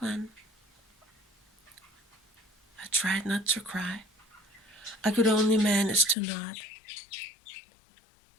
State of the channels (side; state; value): right; drops out; at 6.2 s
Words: I tried not to cry. I could only manage to nod.